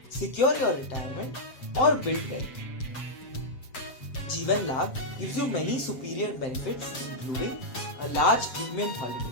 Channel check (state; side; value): late; right; 7.5 ms